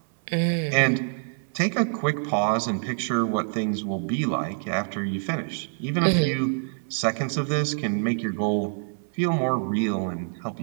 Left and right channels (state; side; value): silent; left; 61 dB below the other